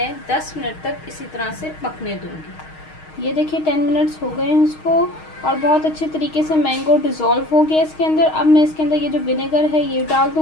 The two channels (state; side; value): late; right; 6.4 ms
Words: 10 मिनट तक इसी तरह से पकने दूंगी। ये देखिए 10 मिनट्स हो गए हैं इसको और बहुत अच्छे तरीके से मैंगो डिज़ोल्व हो गया इसके अंदर। अब मैं इसके अंदर ये जो विनेगर है ये डाल